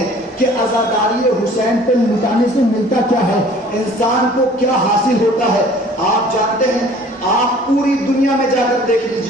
کہ عزاداری حسین پہ لٹانے سے ملتا کیا ہے, انسان کو کیا حاصل ہوتا ہے. آپ جانتے ہیں, آپ پوری دنیا میں جا کر دیکھ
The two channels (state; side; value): normal; both; correlation 0.51